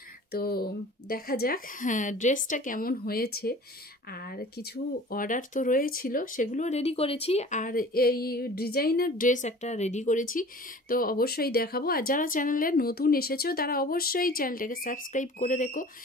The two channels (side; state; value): both; normal; correlation 0.44